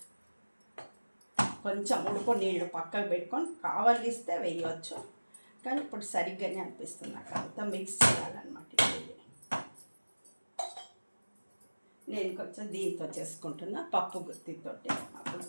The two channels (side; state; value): both; inverted; correlation -1.00